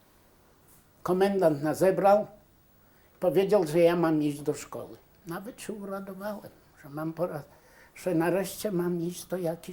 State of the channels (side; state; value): both; identical; correlation 1.00